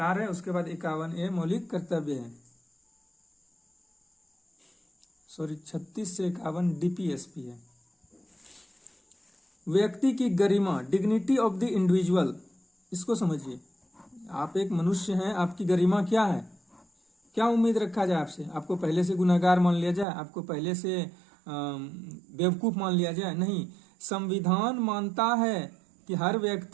है, उसके बाद 51A मौलिक कर्तव्य है। सॉरी, 36 से 51 DPSP है। व्यक्ति की गरिमा, डिग्निटी ऑफ द इंडिविजुअल, इसको समझिए। आप एक मनुष्य हैं, आपकी गरिमा क्या है? क्या उम्मीद रखा जाए आपसे? आपको पहले से गुनहगार मान लिया जाए? आपको पहले से बेवकूफ मान लिया जाए, नहीं। संविधान मानता है कि हर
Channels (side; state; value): left; drops out; at 20.1 s